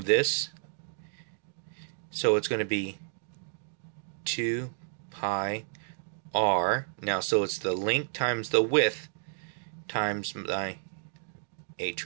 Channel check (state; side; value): silent; left; digital silence